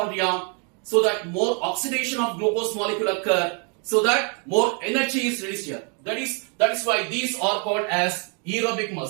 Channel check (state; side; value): quieter; left; 37.6 dB